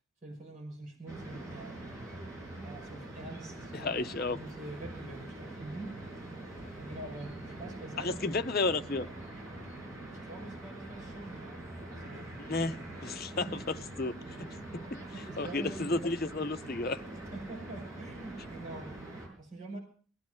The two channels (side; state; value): both; normal; correlation 0.35